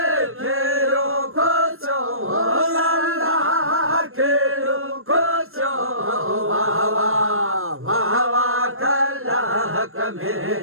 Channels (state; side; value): late; left; 0.61 ms